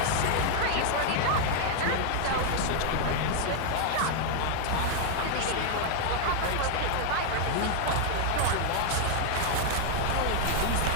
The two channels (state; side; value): different; both; correlation 0.00